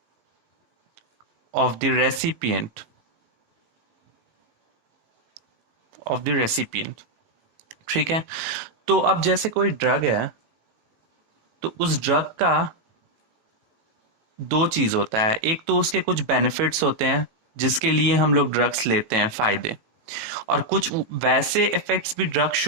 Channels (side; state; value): left; late; 18 ms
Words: of the recipient. ठीक है, तो अब जैसे कोई ड्रग है तो उस ड्रग का दो चीज होता है। एक तो उसके कुछ बेनिफिट्स होते हैं जिसके लिए हम लोग ड्रग्स लेते हैं, फायदे, और कुछ वैसे इफेक्ट्स भी ड्रग